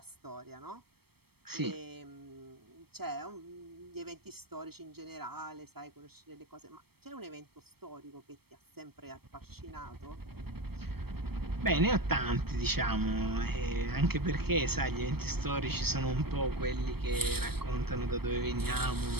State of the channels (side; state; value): left; late; 0.96 ms